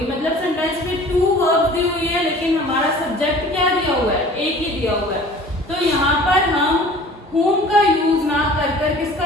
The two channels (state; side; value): normal; both; correlation 0.46